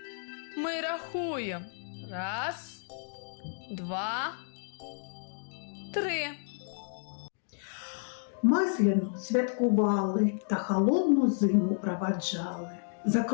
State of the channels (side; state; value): right; silent; digital silence